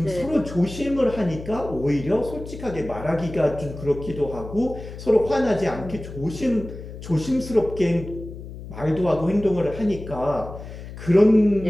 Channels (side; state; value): left; noise; hum, 12 dB below the sound